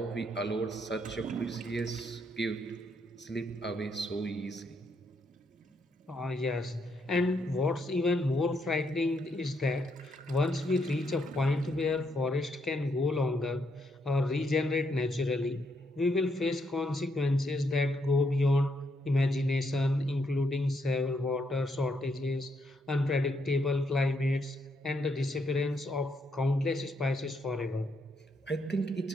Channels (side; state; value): both; normal; correlation 0.76